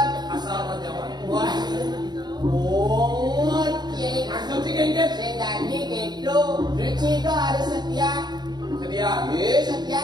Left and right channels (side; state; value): left; late; 0.20 ms